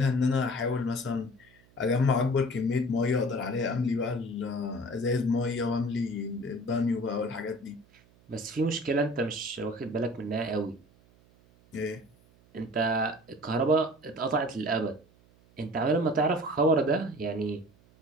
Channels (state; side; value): noise; right; hum, 29 dB below the sound